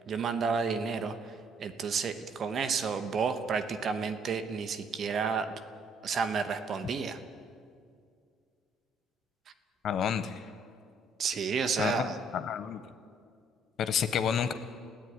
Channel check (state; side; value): normal; both; correlation 0.64